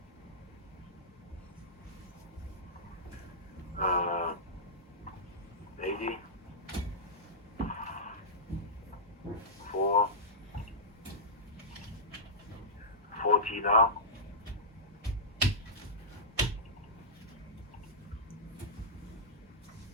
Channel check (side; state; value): both; normal; correlation -0.14